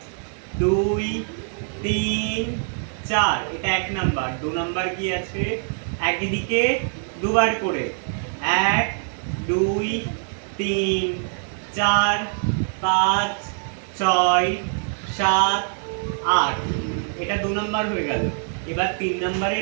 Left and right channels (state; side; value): silent; left; 55 dB below the other